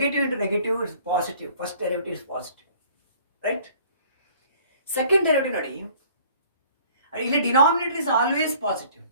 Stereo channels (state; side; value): inverted; both; correlation -0.54